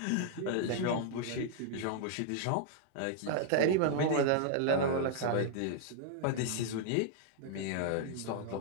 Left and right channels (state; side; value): different; both; correlation 0.00